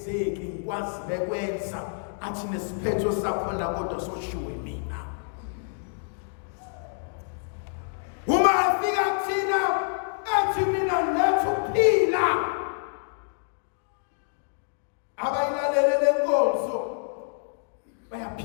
ngikwazi bekwenza, athi nesiphetho sakhona kodwa soshiwe mina. Uma afika kuthina athi mina lethu phila, abayilalele lenkonzo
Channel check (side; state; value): right; silent; digital silence